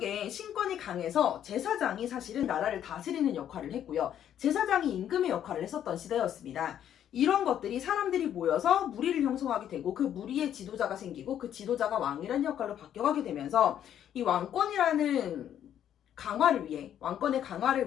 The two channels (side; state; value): right; quieter; 10.2 dB